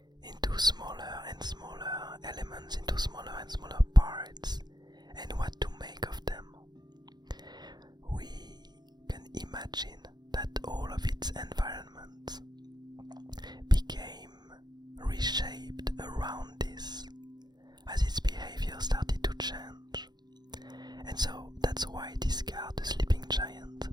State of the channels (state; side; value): late; left; 0.20 ms